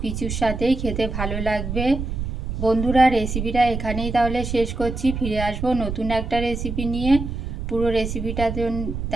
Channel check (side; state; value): right; noise; rumble, 5 dB below the sound